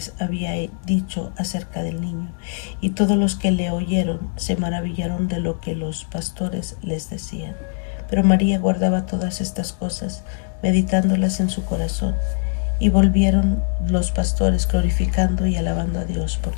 había dicho acerca del niño. Y todos los que le oyeron se maravillaron de lo que los pastores les decían. Pero María guardaba todas estas cosas, meditándolas en su corazón. Y volvieron los pastores glorificando y alabando a Dios por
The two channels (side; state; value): right; silent; 59 dB below the other